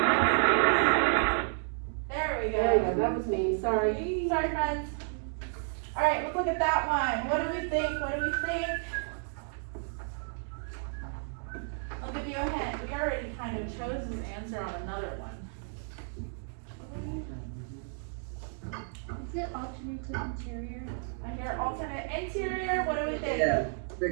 There we There you go. go, that was me, sorry. Sorry, friends. Alright, let's look at that one. What do we think? What do we think? I'll give you a hint. We already kind of chose this answer on another one. Is it alternate to interior? I hear alternate interior. What do we think? Yeah,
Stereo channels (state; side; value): silent; left; 55 dB below the other